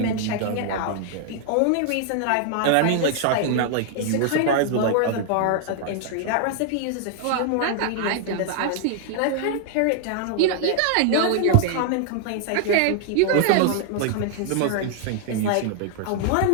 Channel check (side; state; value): both; different; correlation -0.01